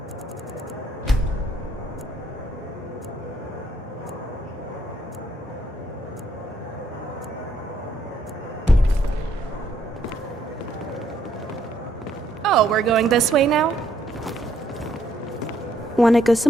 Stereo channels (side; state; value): both; normal; correlation 0.71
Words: Oh, we're going this way now? Wanna go